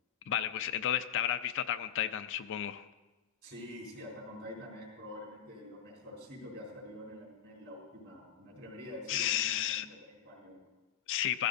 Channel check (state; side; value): quieter; right; 9.4 dB